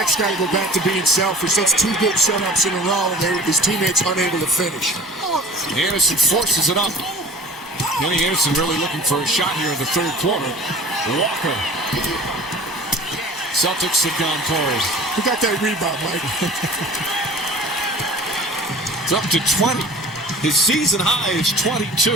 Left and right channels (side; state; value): both; normal; correlation 0.43